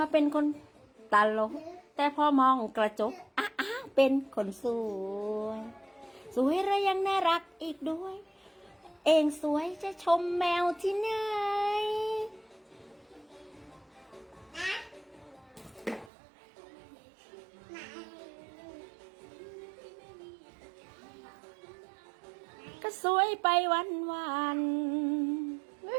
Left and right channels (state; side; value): drops out; left; at 16.1 s